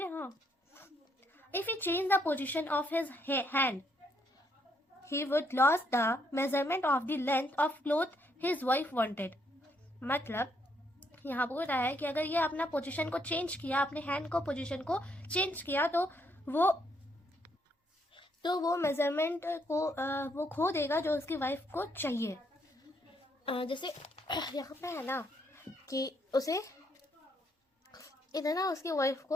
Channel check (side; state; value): both; normal; correlation 0.73